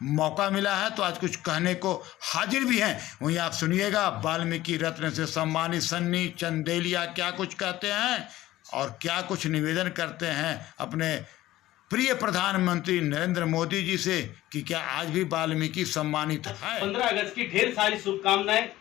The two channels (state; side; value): quieter; right; 15.7 dB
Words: मौका मिला है, तो आज कुछ कहने को हाजिर भी हैं। वहीं आप सुनिएगा वाल्मीकि रत्न से सम्मानित सन्नी चंदेलिया क्या कुछ कहते हैं और क्या कुछ निवेदन करते हैं अपने प्रिय प्रधानमंत्री नरेंद्र मोदी जी से कि क्या आज भी वाल्मीकि सम्मानित है। 15 अगस्त की ढेर सारी शुभकामनाएं।